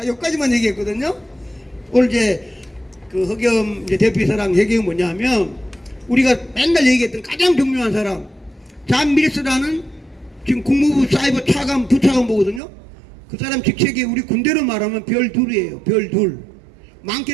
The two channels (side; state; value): left; drops out; at 12.6 s